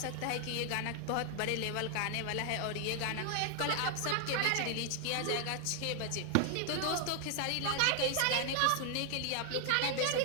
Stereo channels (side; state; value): both; different; correlation 0.00